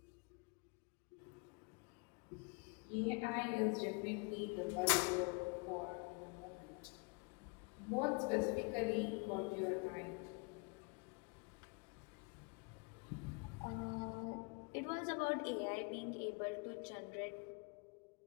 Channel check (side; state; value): right; quieter; 32.2 dB